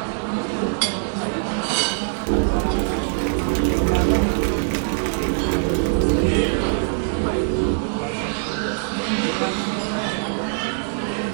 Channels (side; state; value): left; silent; digital silence